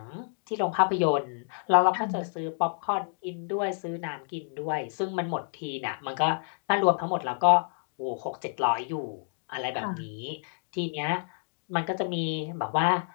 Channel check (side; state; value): right; silent; digital silence